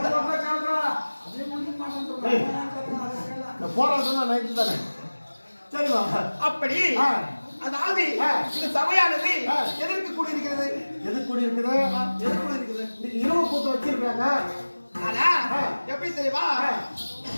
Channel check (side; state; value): both; inverted; correlation -1.00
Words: போராட்டம் நைட்டு தானே. சரிவா. அப்படி அதாவது இந்த சபையானது எதற்கு கூடியிருக்கிறது? எதுக்கு கூடியிருக்குது? இன்னைக்கு இரவு கூத்து வச்சிருக்காங்க. ஆனா எப்படி தெரியுமா?